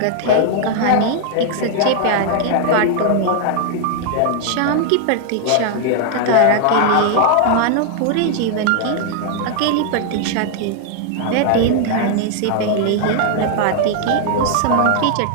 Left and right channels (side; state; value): both; different; correlation 0.00